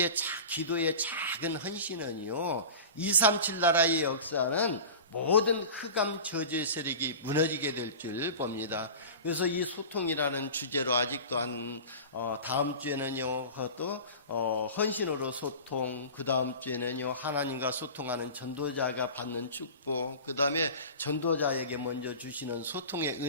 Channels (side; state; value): both; inverted; correlation -0.34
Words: 기도의 작은 헌신은요, 237 나라의 역사는 모든 흑암 저주의 세력이 무너지게 될 줄 봅니다. 그래서 이 소통이라는 주제로 아직도 다음 주에는요, 그것도 헌신으로 소통, 그 다음 주에는요, 하나님과 소통하는 전도자가 받는 축복, 그 다음에 전도자에게 먼저 주시는 소통의